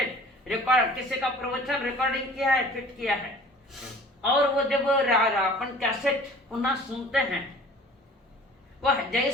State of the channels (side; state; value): both; normal; correlation 0.48